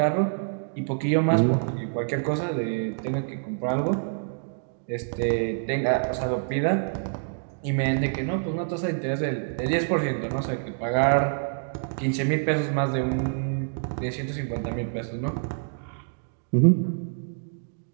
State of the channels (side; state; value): left; silent; digital silence